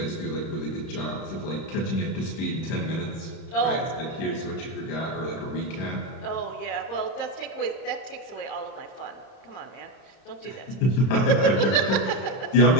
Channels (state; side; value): late; right; 30 ms